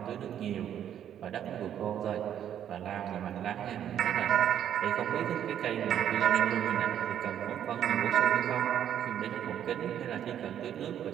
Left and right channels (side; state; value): left; quieter; 10.0 dB